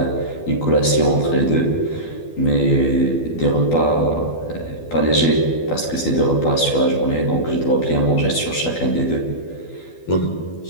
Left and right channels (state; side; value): late; right; 12 ms